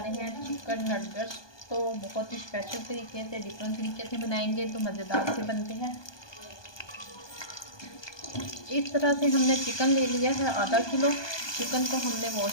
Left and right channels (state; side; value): late; right; 1.2 ms